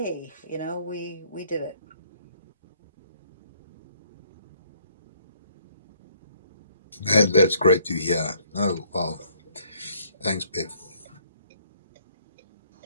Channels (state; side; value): inverted; both; correlation -0.64